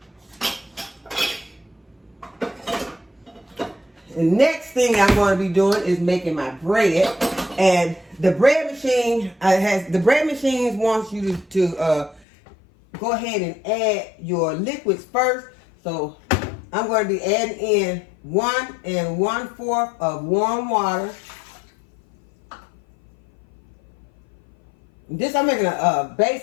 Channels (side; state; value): right; drops out; at 12.2 s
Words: The next thing I'm going to be doing is making my bread. And the bread machine wants you to go ahead and add your liquids first. So I'm going to be adding in 1 1/4 of warm water. I'm making a